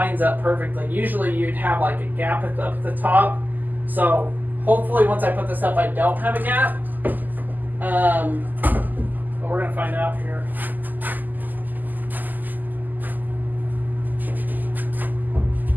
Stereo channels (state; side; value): late; left; 0.085 ms